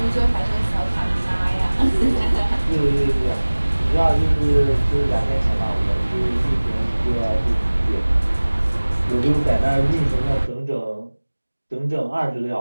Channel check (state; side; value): inverted; both; correlation -1.00